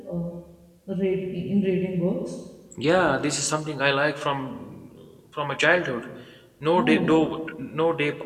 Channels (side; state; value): both; identical; correlation 1.00